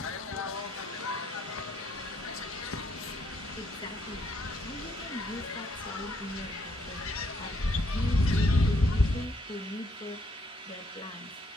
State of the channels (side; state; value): both; normal; correlation 0.71